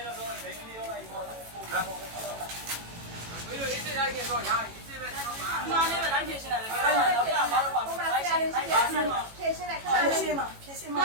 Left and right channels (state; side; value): late; left; 18 ms